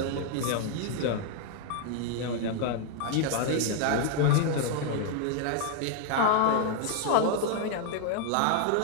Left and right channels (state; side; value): different; both; correlation 0.00